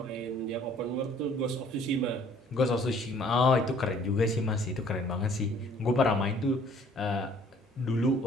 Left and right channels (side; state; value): both; normal; correlation 0.57